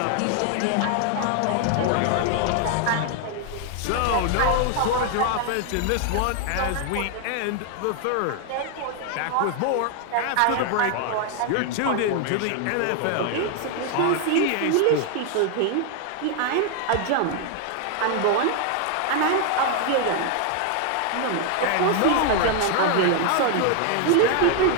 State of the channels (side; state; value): both; different; correlation 0.00